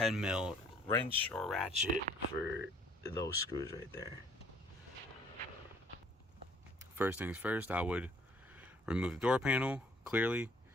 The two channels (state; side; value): normal; both; correlation 0.60